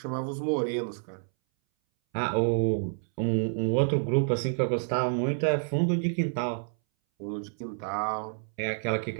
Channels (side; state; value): left; silent; 59 dB below the other